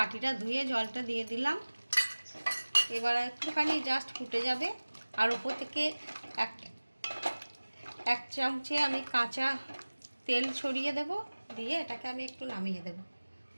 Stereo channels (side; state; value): both; inverted; correlation -1.00